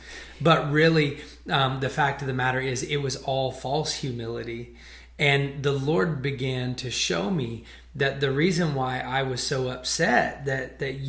But really, the fact of the matter is it was all false humility. And the Lord began to show me that the reason why I was so upset that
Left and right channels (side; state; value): both; identical; correlation 1.00